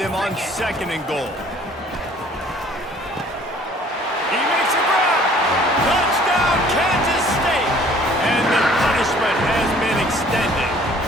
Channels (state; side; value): normal; both; correlation 0.55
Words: them on 2nd and goal? He makes a grab. Touchdown, Kansas State. And the punishment has been extended.